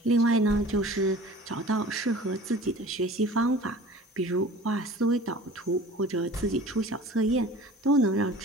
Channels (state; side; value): normal; both; correlation 0.44